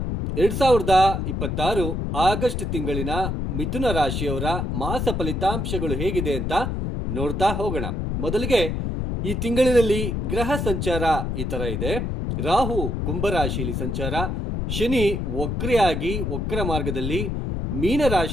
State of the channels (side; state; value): left; noise; rumble, 2 dB below the sound